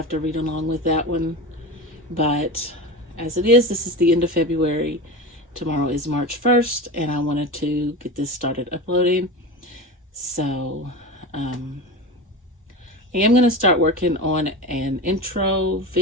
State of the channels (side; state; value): both; normal; correlation 0.26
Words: to read along with that one, but as it is, this is the end of February. Tomorrow is March 1st, and I wanted to get this started uploading. So I am going to start working on an intro